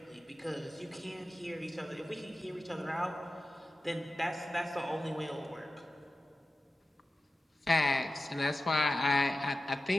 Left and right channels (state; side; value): normal; both; correlation 0.93